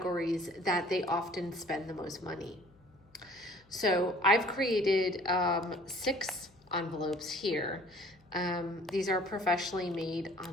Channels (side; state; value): left; noise; hum, 29 dB below the sound